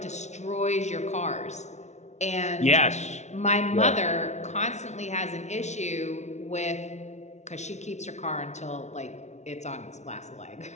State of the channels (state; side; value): late; right; 0.33 ms